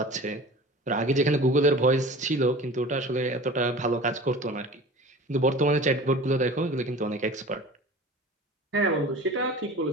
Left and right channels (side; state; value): both; normal; correlation 0.39